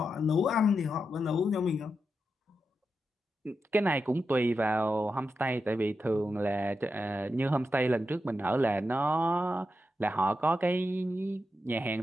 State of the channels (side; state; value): both; normal; correlation 0.88